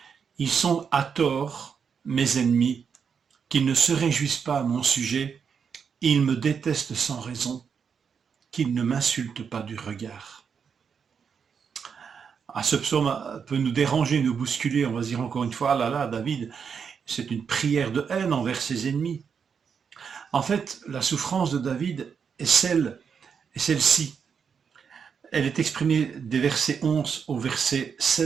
Ils sont à tort mes ennemis, qu'ils ne se réjouissent pas à mon sujet, ils me détestent sans raison, qu'ils ne m'insultent pas du regard. Ce psaume peut nous déranger, nous bousculer, on va se dire encore une fois, ah là là, David, c'est une prière de haine envers ses ennemis. En fait, la souffrance de David est celle-ci. Elle est exprimée des versets 11 au verset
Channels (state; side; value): quieter; left; 6.6 dB